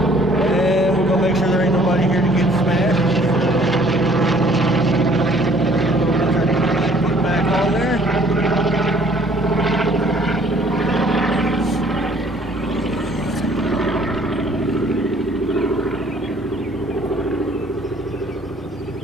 we're gonna make sure there ain't nobody here to get smashed. On there.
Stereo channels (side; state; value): both; normal; correlation 0.58